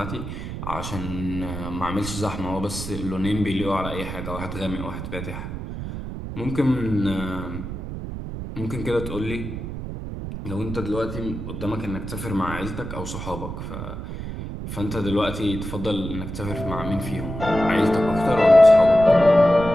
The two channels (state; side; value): noise; right; rumble, 7 dB below the sound